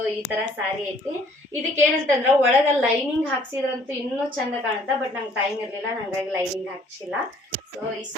ಈ ತರ ಸಾರಿ ಐತಿ. ಇದಕ್ಕೆ ಏನಂತಂದ್ರ ಒಳಗ ಲೈನಿಂಗ್ ಹಾಕ್ಸಿದ್ರಂತೂ ಇನ್ನೂ ಚಂದ ಕಾಣುತ್ತಾ, ಬಟ್ ನಂಗೆ ಟೈಮ್ ಇರ್ಲಿಲ್ಲ, ಹಂಗಾಗಿ ಲೈನಿಂಗ್ ಹಾಕ್ಸಿಲ್ಲ. ಸೊ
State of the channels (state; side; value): normal; both; correlation 0.59